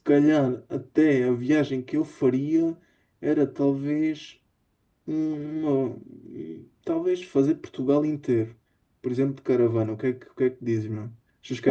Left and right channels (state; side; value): identical; both; correlation 1.00